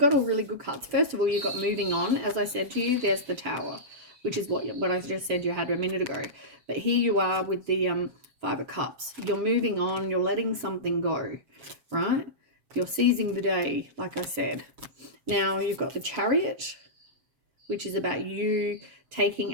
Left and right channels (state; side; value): late; left; 7.3 ms